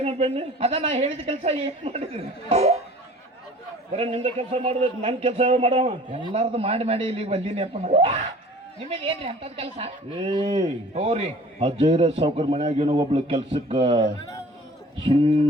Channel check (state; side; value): normal; both; correlation 0.47